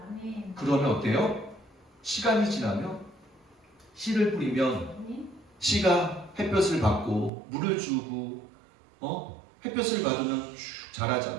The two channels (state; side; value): drops out; left; at 7.3 s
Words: 아멘. 그러면 어때요? 시간이 지나면 씨를 뿌리면 아멘. 씨가 햇볕을 받고 물을 주고 햇볕을 받으면 쭉